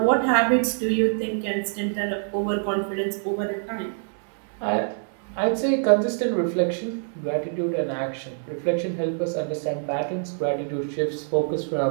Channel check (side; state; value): left; silent; 62 dB below the other